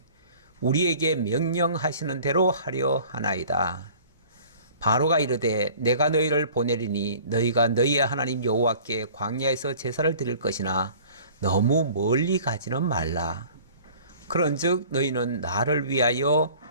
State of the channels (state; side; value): inverted; both; correlation -0.48